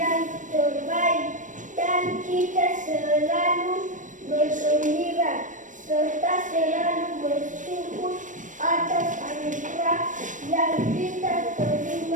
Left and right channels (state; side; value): late; left; 0.37 ms